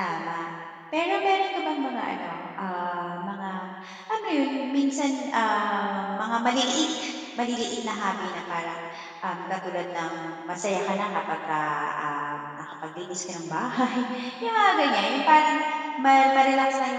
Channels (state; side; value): identical; both; correlation 1.00